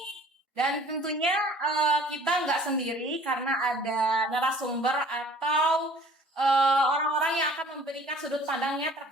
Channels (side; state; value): both; normal; correlation 0.51